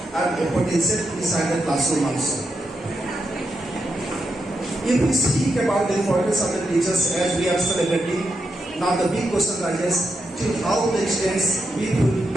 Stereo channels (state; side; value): normal; both; correlation 0.84